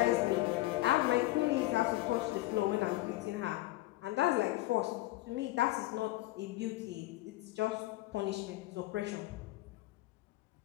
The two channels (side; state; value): right; quieter; 18.1 dB